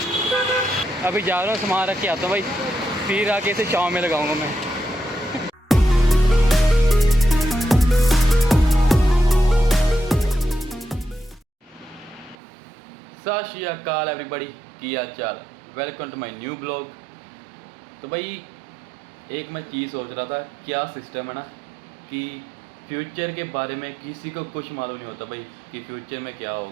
अभी जा रहा हूँ, सामान रख के आता हूँ भाई, फिर आके इसे छाँव में लगाऊंगा मैं। सत श्री अकाल एवरीबॉडी, की हाल चाल। Welcome to my new blog. तो भाई एक मैं चीज़ सोच रहा था, क्या सिस्टम है ना कि फ्यूचर के बारे में किसी को कुछ मालूम नहीं होता भाई कि फ्यूचर में क्या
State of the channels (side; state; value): left; drops out; at 12.4 s